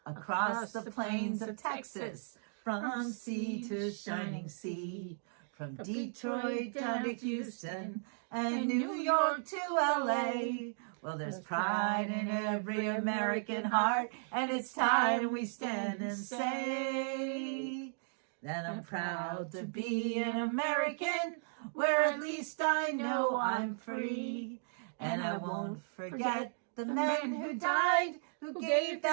across the plains of Texas, from sea to shining sea, from Detroit down to Houston and New York to LA. Well, there's pride in every American heart, and it's time we stand and say that I'm proud to be an American, where at least I know I'm free. And I won't forget the men who died, who gave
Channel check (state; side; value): silent; left; digital silence